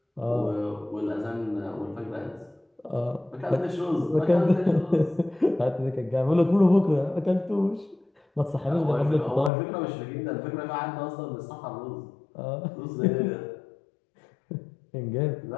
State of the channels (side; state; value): right; drops out; at 9.5 s